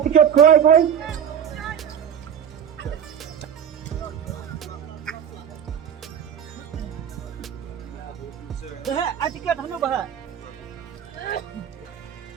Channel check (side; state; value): left; quieter; 8.6 dB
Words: tiket kuai. Bahak, tiket hanu bahak.